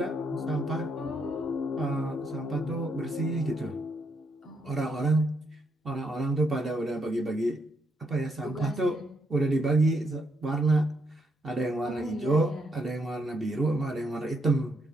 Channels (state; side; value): normal; both; correlation 0.76